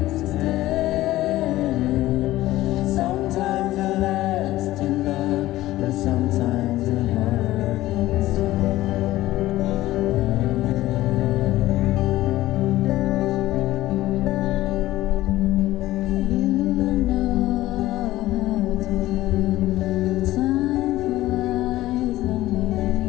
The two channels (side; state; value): right; quieter; 16.1 dB